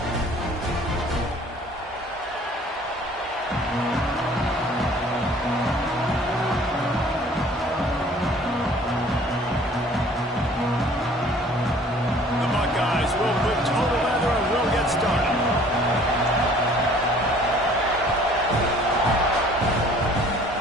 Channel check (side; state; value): both; normal; correlation 0.53